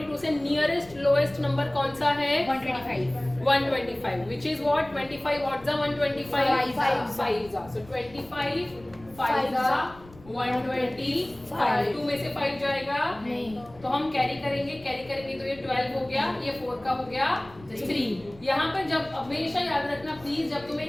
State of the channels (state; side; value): noise; left; rumble, 22 dB below the sound